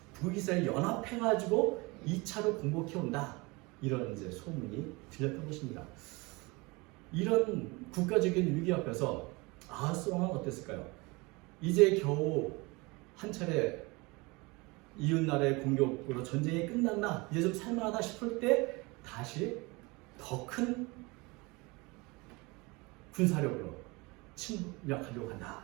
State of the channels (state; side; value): quieter; left; 25.4 dB